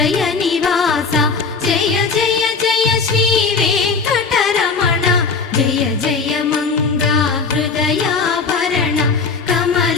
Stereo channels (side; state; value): right; quieter; 4.8 dB